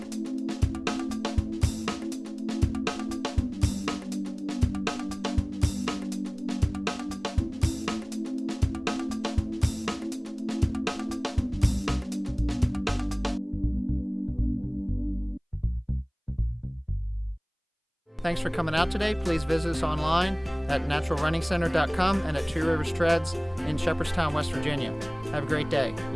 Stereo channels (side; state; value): both; identical; correlation 1.00